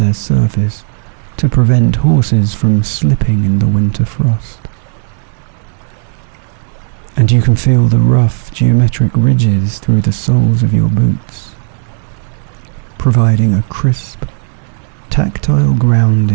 surface to prevent horses from slipping in the winter frost. And you can feel the rough geometric ridges through the soles of your boots, providing a crisp, tactile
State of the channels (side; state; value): left; silent; 55 dB below the other